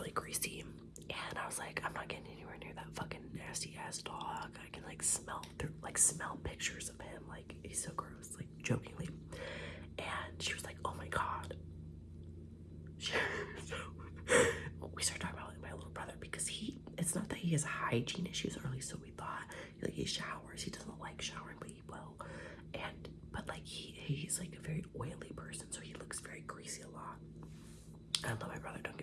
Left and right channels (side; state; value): both; identical; correlation 1.00